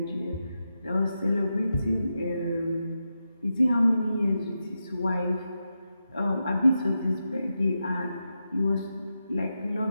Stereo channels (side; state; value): both; inverted; correlation -0.88